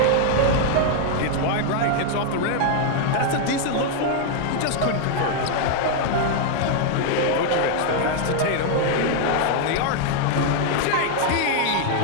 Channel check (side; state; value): both; different; correlation 0.00